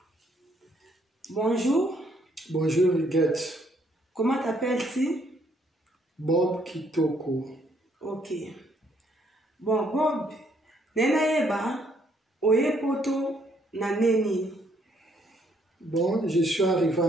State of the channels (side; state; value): both; normal; correlation 0.69